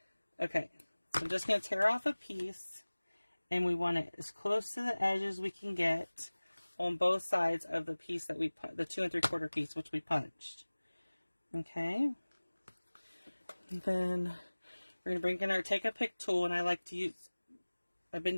Okay, so I'm just going to tear off a piece, and we want it as close to the edge as we can get on both sides of the piece that we, the 2 3/4 piece, which we punched. Okay. And then we're going to bring in our Take a Pick tool, and I like to use, I've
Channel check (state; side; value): inverted; both; correlation -1.00